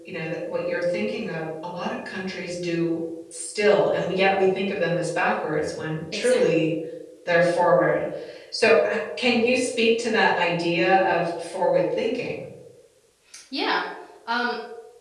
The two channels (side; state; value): both; identical; correlation 1.00